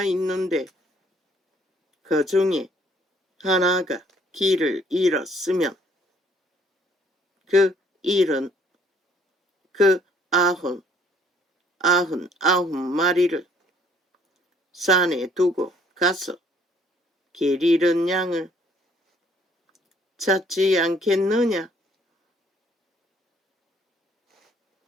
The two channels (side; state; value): both; normal; correlation 0.62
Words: 있는데 그 중에 하나가 길을 잃었으면 그 일은 그 99마리를 산에 두고 가서 길 잃은 양을 찾지 않겠느냐?